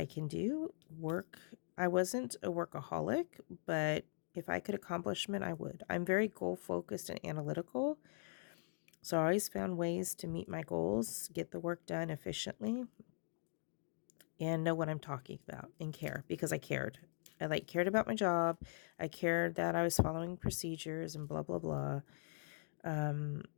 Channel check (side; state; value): right; silent; digital silence